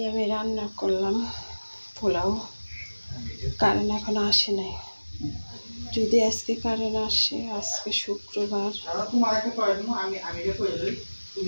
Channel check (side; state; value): both; inverted; correlation -1.00